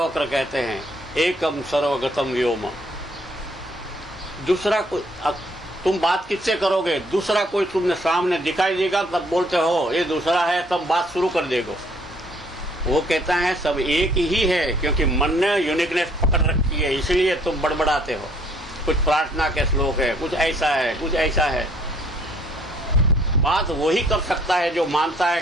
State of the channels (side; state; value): both; normal; correlation 0.62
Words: कहते हैं एकम सर्वगतम व्योम। दूसरा कोई, तुम बात किससे करोगे? दूसरा कोई तुमने सामने दिखाई देगा तब बोलते हो ये दूसरा है, तब बात शुरू कर देगो। वो कहता है सब एक ही है, क्योंकि मन ने यूनिकनेस पकड़ रखी है, इसलिए तुम बड़बड़ाते हो। कुछ प्रार्थना के श्लोक है, कुछ ऐसा है, कुछ ऐसा है। बात वही कर सकता है जो मानता है